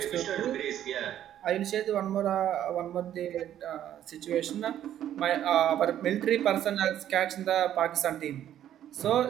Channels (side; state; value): left; quieter; 11.2 dB